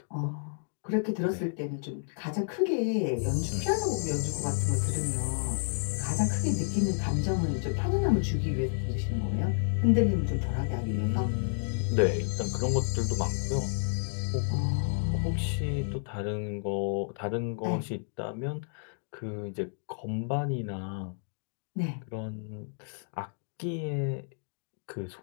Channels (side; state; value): right; silent; digital silence